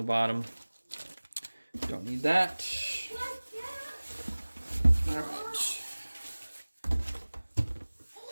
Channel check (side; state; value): both; inverted; correlation -1.00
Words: bottom. Don't need that. All right.